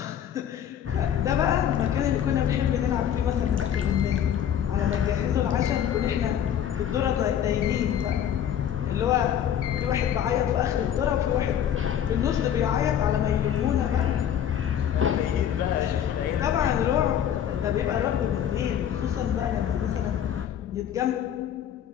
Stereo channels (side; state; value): right; quieter; 9.6 dB